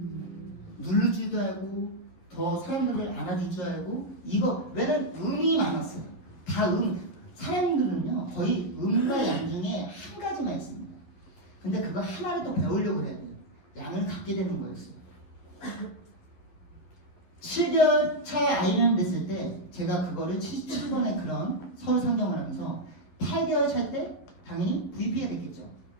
누를 줄도 알고 더 사람들을 안아줄 줄 알고 이거 왜냐면 음이 많았어요. 다 사람들은요 거의 음과 양 중에 한 가지만 있습니다. 근데 그거 하나를 또 배우려고 해야 돼요. 양을 갖게 되는 거였어요. 7개월 차 IMM 됐을 때 제가 그거를 77번의 그런 서울 상경을 하면서 8개월 차 때 당연히 VP가 됐겠죠.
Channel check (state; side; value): late; right; 11 ms